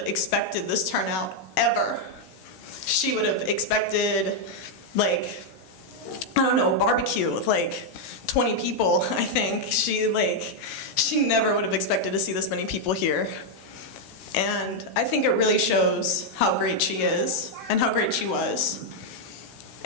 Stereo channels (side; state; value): right; late; 16 ms